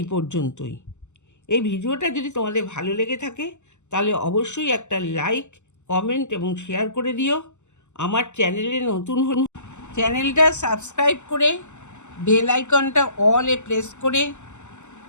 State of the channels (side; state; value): right; late; 0.84 ms